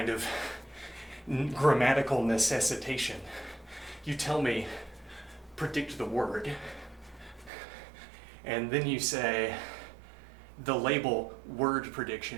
of grammatical necessitation. You tell me, predict the word, and then you say, the label word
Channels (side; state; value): left; drops out; at 7.5 s